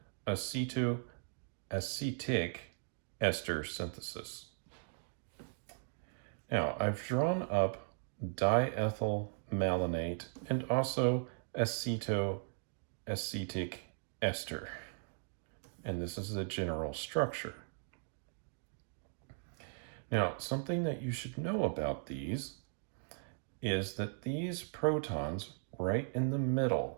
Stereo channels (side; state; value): left; silent; digital silence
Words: acetoacetic ester synthesis. Now, I've drawn up diethyl malonate and also acetoacetic ester. And this is the general structure. Now, something that you should know about these is that these protons right in the